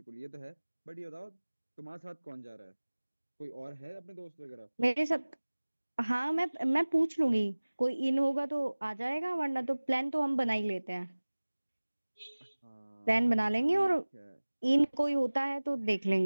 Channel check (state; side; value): inverted; both; correlation -1.00